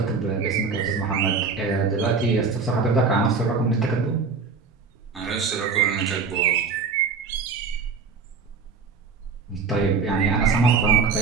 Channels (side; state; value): left; quieter; 5.0 dB